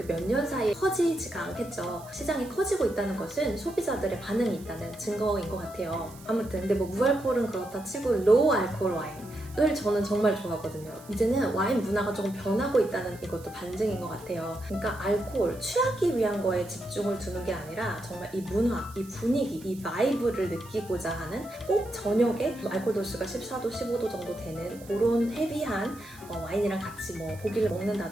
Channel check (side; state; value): right; noise; hiss, 21 dB below the sound